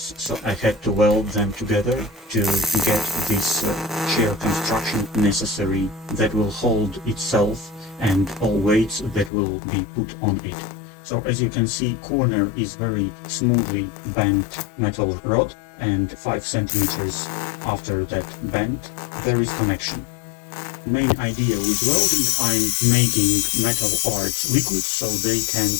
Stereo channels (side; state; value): right; drops out; at 9.3 s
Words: so I had to weld them together to get this chair construction necessary that will hold itself and all weights that will be put on it. So as you can see, corner is very smoothly bent metal rod, and 5 centimeters after that bend, there is connection. Main idea with welding, I'm making metal parts liquid so they can